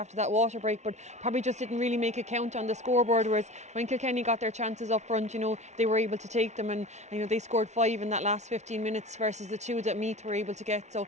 that water break, but probably just didn't really make a count on the scoreboard, whereas when Kilkenny got their chances up front, you know, they were able to take them, and you know, they scored 5 in that last 15 minutes versus the 2 that Meath were able to get, so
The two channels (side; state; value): left; late; 0.33 ms